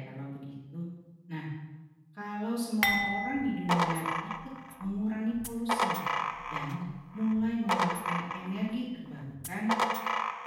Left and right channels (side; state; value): both; identical; correlation 1.00